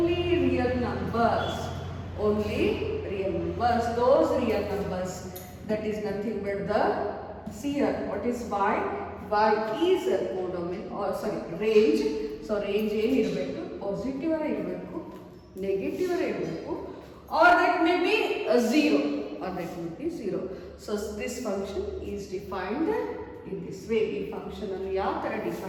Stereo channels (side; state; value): both; identical; correlation 1.00